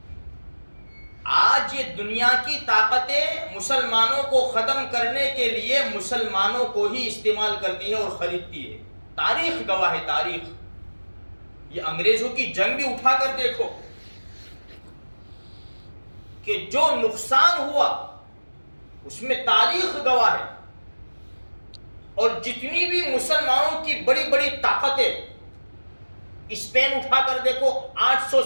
آج یہ دنیا کی طاقتیں مسلمانوں کو ختم کرنے کے لیے مسلمانوں کو ہی استعمال کرتی ہے اور خریدتی ہے، تاریخ گواہ ہے، تاریخ۔ یہ انگریزوں کی جنگ بھی اٹھا کر دیکھو کہ جو نقصان ہوا اس میں تاریخ گواہ ہے، اور جتنی بھی مسلمانوں کی بڑی بڑی طاقتیں، اسپین اٹھا کر دیکھو، 800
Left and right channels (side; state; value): both; inverted; correlation -1.00